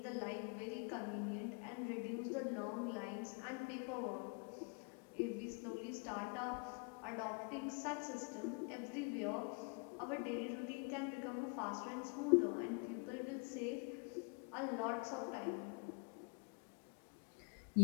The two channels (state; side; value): quieter; right; 35.5 dB